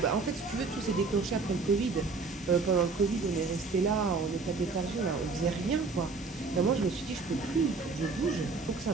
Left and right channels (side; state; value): left; quieter; 4.2 dB